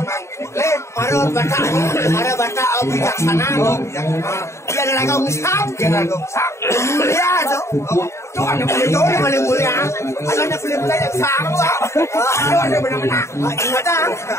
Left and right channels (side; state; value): right; late; 0.14 ms